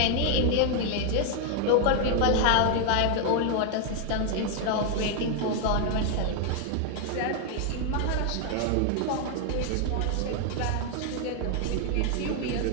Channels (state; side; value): different; both; correlation 0.00